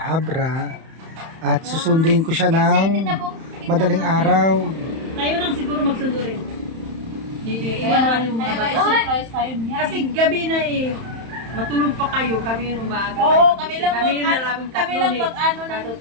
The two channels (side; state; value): left; late; 31 ms